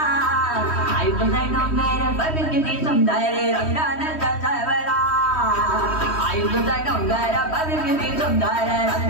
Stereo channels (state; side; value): late; right; 3.1 ms